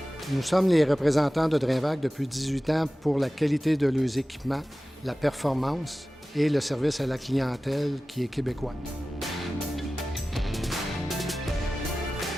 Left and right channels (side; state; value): both; normal; correlation 0.96